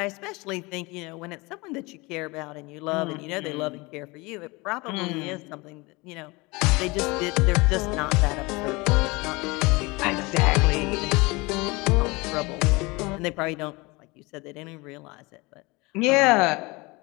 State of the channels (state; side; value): quieter; right; 24.6 dB